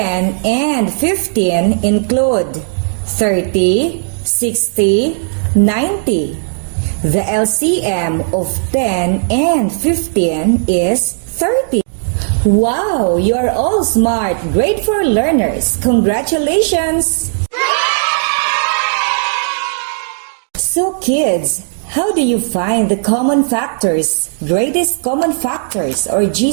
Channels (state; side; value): silent; left; digital silence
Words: and 15 include 30, 60, 90. The LCM of 10 and 15 is 30. Wow, you are all smart, grade 4 learners. Congratulations! So kids, how do you find the common factors, greatest common factors or